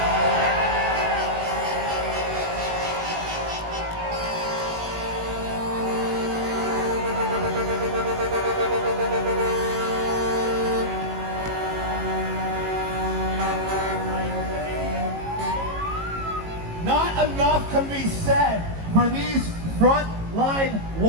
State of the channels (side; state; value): left; late; 18 ms